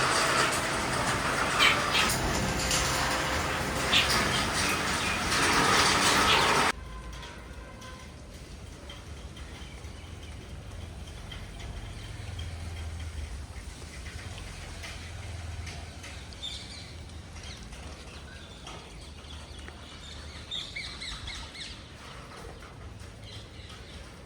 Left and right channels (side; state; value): both; identical; correlation 1.00